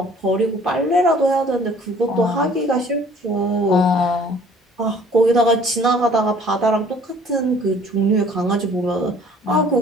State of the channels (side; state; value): both; normal; correlation 0.54